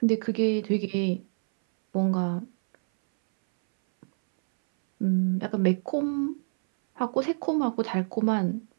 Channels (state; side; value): silent; left; 61 dB below the other